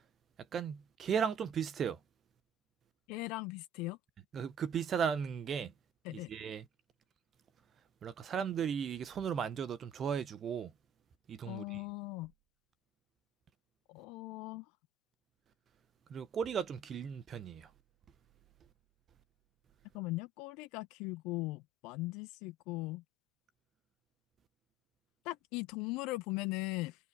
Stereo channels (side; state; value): both; normal; correlation 0.49